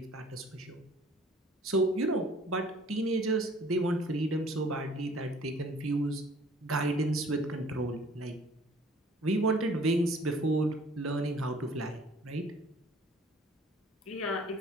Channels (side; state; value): both; normal; correlation 0.54